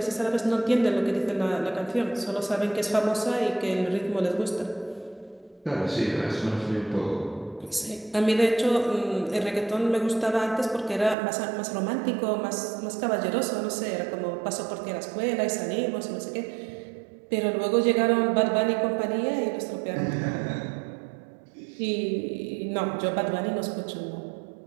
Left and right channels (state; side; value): drops out; left; at 11.2 s